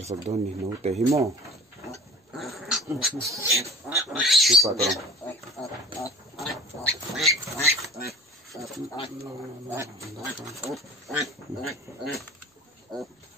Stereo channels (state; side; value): normal; both; correlation 0.42